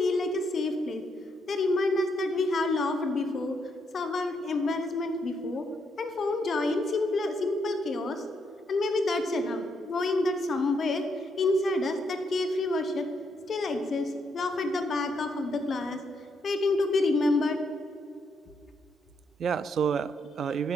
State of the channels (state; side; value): normal; both; correlation 0.77